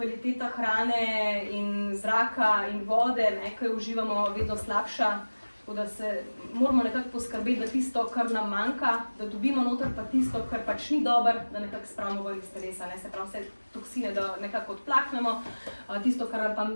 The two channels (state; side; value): inverted; both; correlation -1.00